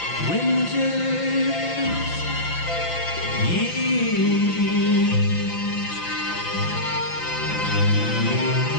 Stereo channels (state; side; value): late; right; 5.9 ms